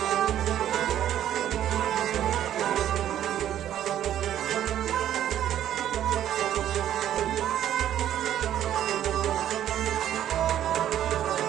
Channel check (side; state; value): left; quieter; 11.2 dB